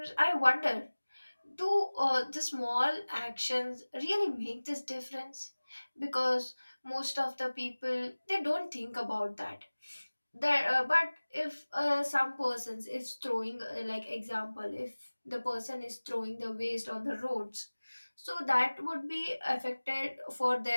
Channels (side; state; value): both; inverted; correlation -1.00